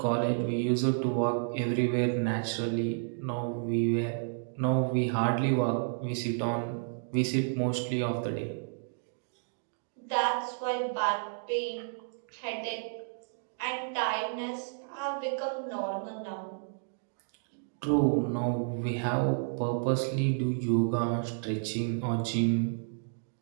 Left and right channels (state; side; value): silent; left; digital silence